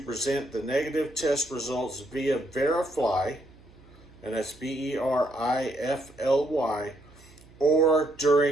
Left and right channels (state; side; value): noise; right; hum, 24 dB below the sound